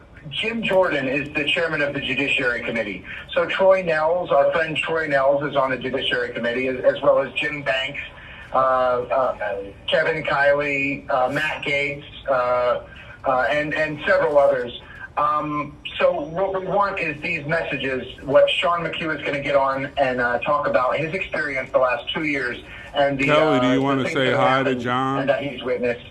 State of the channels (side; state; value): both; identical; correlation 1.00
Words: Jim Jordan is the chairman of the Judiciary Committee. So Troy Nels, our friend Troy Nels, is on the Judiciary Committee, as well as Jim Banks, Kevin Kiley, Matt Gaetz, and several others. So what we want is these messages, what Sean McHugh is going to get on and talk about his experience the last 2 years. And the, Kelly, do you want to say hi to John? And that he's witnessed.